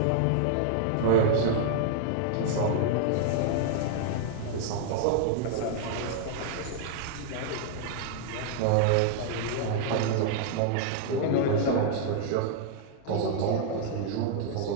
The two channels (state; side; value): different; both; correlation -0.01